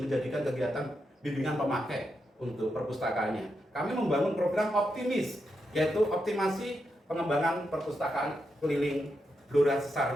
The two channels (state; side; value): normal; both; correlation 0.84